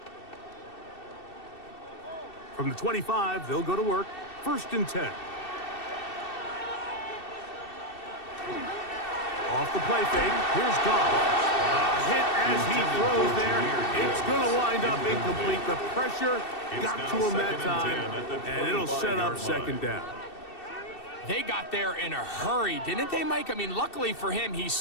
From the 25, they'll go to work. 1st and 10. Off the play fake, here's Goff. A hit as he throws there. It's going to wind up incomplete. The pressure got to him that time, and it'll set up 2nd down. They got there in a hurry, didn't they, Mike? I mean, luckily for him, he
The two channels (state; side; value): late; right; 2.7 ms